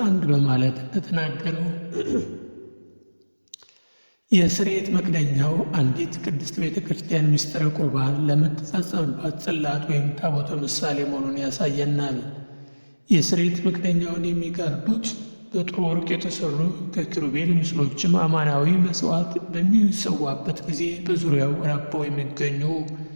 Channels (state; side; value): inverted; both; correlation -1.00